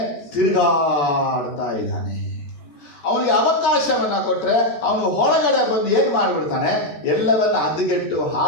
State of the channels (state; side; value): late; right; 14 ms